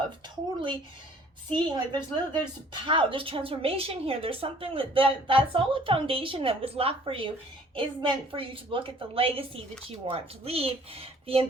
totally seeing, like, there's power, there's transformation here. There's something that solid foundation that was left for you is meant for you to look at the legacy that you want to leave. The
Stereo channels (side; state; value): both; normal; correlation 0.55